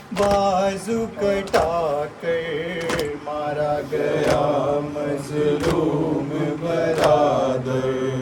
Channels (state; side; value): identical; both; correlation 1.00